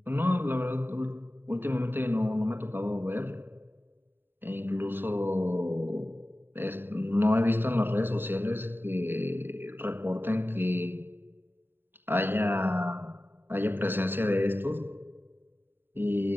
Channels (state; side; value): late; left; 0.099 ms